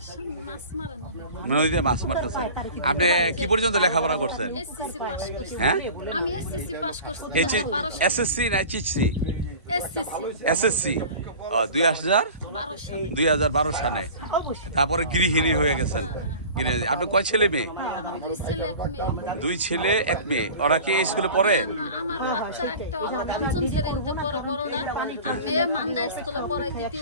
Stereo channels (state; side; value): inverted; both; correlation -0.39